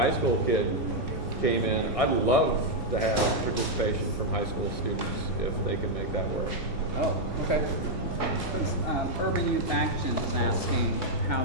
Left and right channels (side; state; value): both; normal; correlation -0.01